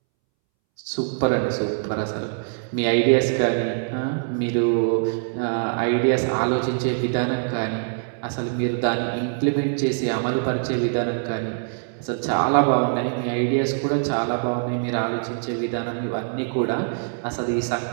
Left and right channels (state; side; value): silent; left; 63 dB below the other